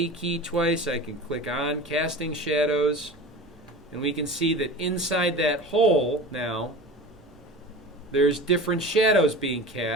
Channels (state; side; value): normal; both; correlation 0.34